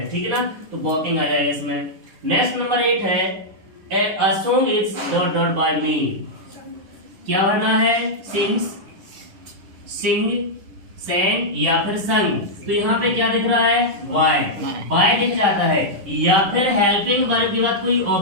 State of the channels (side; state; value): left; late; 10 ms